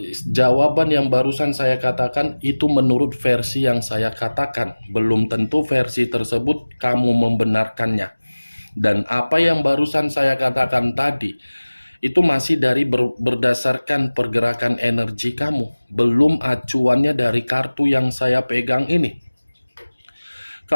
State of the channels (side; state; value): both; inverted; correlation -1.00